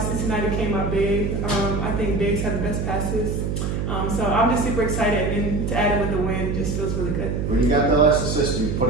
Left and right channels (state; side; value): noise; right; hum, 1 dB below the sound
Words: tonight it came out big. I think bigs have the best passes. So I'm just super excited, and to add it with the win just feels really good. When you got the last assist, you put